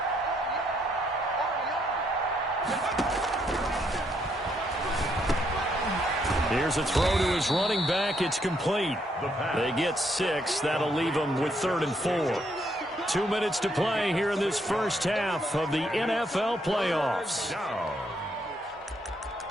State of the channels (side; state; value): both; normal; correlation 0.73